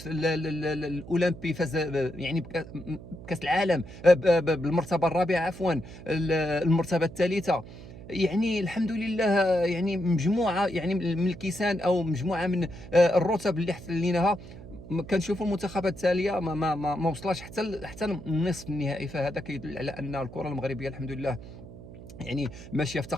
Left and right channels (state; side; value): noise; right; hum, 15 dB below the sound